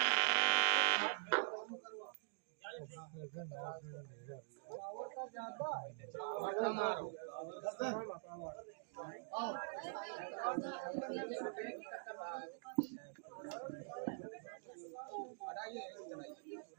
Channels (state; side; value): silent; left; digital silence